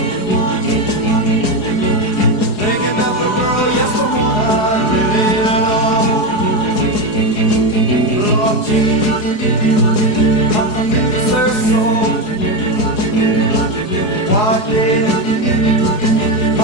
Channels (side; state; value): right; late; 4.8 ms